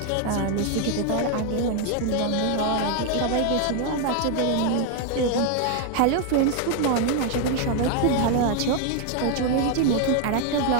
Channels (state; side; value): different; both; correlation 0.00